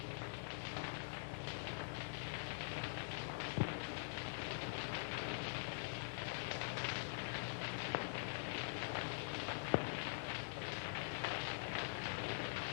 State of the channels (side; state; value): right; silent; digital silence